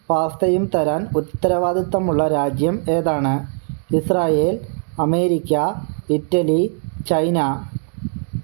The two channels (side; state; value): left; silent; 55 dB below the other